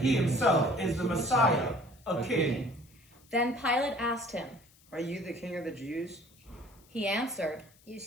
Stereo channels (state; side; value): noise; left; hiss, 28 dB below the sound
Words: himself is the Messiah, a king." Then Pilate asked him, "Are you the king of the Jews?" He answered, "You